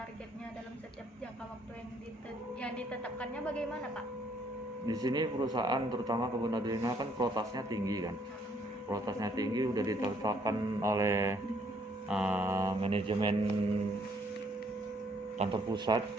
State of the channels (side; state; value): both; normal; correlation 0.67